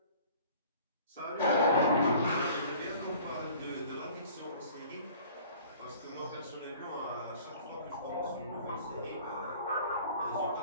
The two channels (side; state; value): both; inverted; correlation -0.49